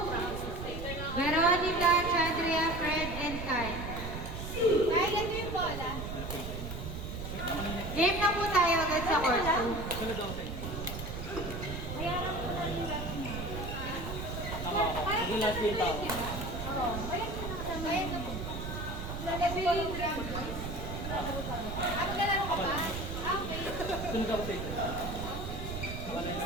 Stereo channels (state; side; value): noise; right; rumble, 6 dB below the sound